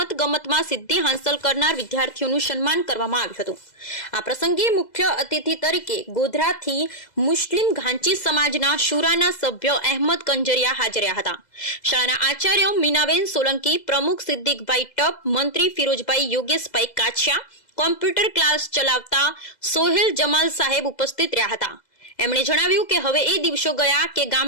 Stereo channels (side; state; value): right; late; 2.0 ms